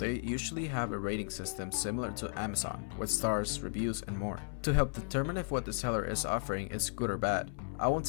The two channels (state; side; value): silent; right; 55 dB below the other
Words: usually have a rating system similar to Amazon, with stars, reviews, and more, to help determine if what the seller is offering is good or bad. I won't